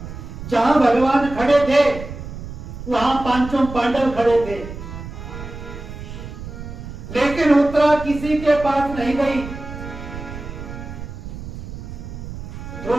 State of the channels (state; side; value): noise; right; rumble, 10 dB below the sound